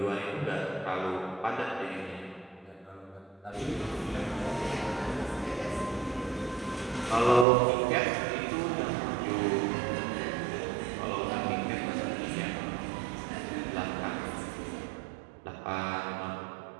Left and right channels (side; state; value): left; drops out; at 7.5 s